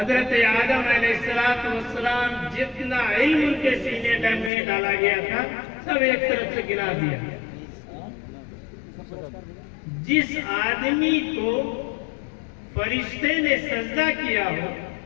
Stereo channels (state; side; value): drops out; right; at 4.5 s